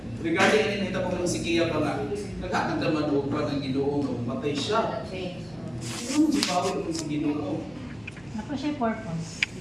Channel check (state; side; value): noise; right; hum, 25 dB below the sound